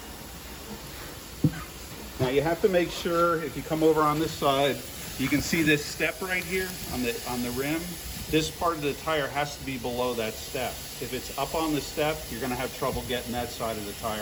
Now you have to make sure, if you come over on this side, you can see this step right here on the rim. This part of the tire has to be below that step. If it's up on the step, you're going to have trouble getting that side of the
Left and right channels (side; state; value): both; identical; correlation 1.00